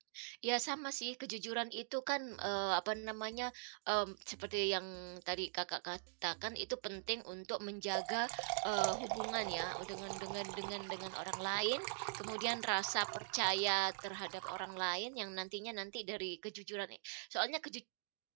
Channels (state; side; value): silent; left; digital silence